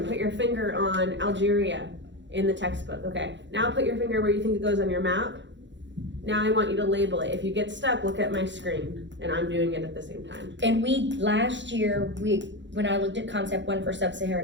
put your finger on Algeria in the textbook, okay? Now put your finger where you think it goes on your map. Now I want you to label it. If you get stuck, look at my screen, and I'm doing it at the same time. And last year, when I looked at concept 1 for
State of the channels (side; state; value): left; late; 0.53 ms